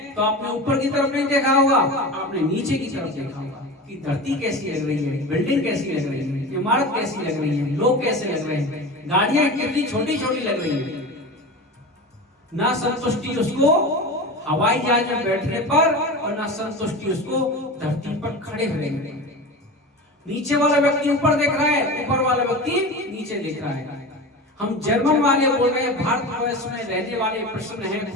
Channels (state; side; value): normal; both; correlation 0.29